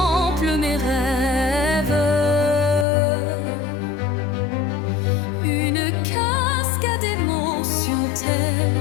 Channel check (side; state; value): right; drops out; at 2.9 s